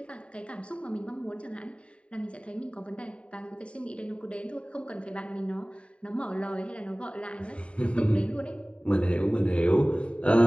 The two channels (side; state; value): right; late; 0.059 ms